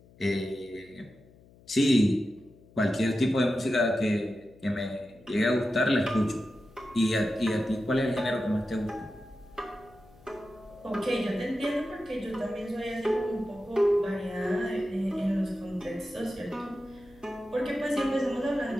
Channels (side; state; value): left; noise; hum, 25 dB below the sound